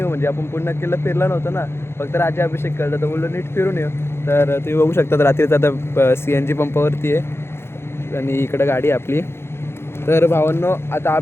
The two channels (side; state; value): right; late; 0.12 ms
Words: म्हणजे आपण पुन्हा किल्ला फिरला नव्हतं ना, फक्त राज्याभिषेक केला. तर बोललो नीट फिरून येऊ. तर तुम्ही बघू शकता रात्रीचा आता CNG पंपावरती आहे आणि इकडं गाडी आहे आपली. तर भावांनो, आता